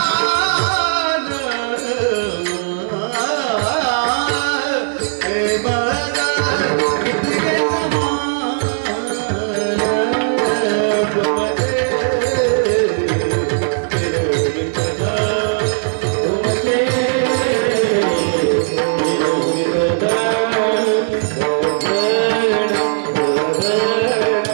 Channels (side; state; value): left; silent; digital silence